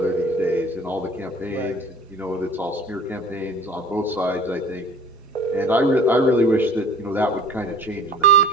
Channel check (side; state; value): both; normal; correlation 0.46